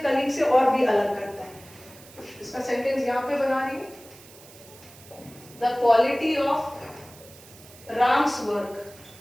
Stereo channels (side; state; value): right; noise; hiss, 21 dB below the sound